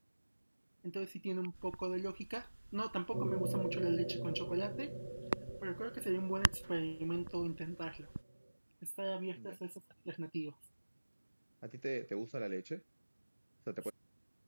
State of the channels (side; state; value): both; inverted; correlation -1.00